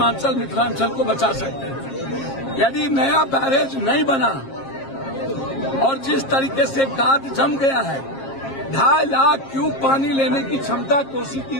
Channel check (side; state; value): right; late; 7.5 ms